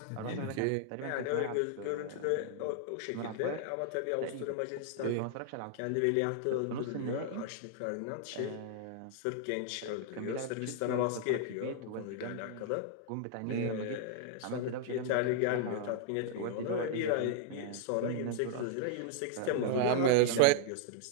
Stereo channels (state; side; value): different; both; correlation 0.00